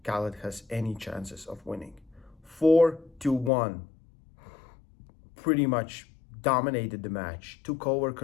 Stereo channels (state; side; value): drops out; right; at 3.5 s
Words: Khalid has any chances of winning. 4-1, pretty much dominated the match, took over